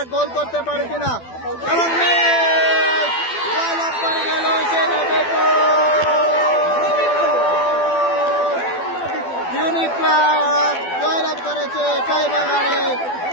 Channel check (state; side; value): late; right; 12 ms